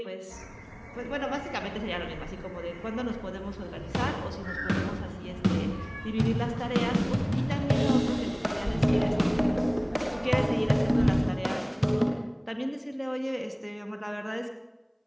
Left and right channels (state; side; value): identical; both; correlation 1.00